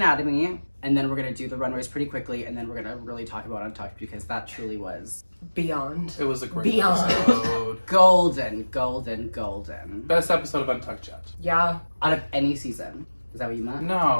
and then we're going to do the runways pretty quickly, and then we're going to really talk about Untucked, because that truly was Beyond. It was a great Beyond. episode. golden, golden, golden. Best episode of Untucked yet. Yeah. Out of any season. Is that what you meant?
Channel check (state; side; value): inverted; both; correlation -1.00